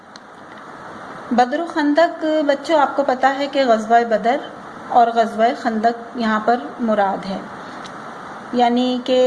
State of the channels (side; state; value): both; identical; correlation 1.00